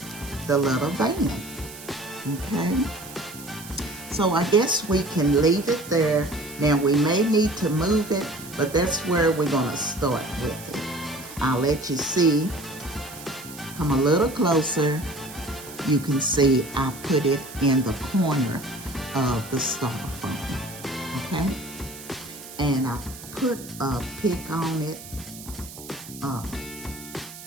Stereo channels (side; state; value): right; noise; hiss, 15 dB below the sound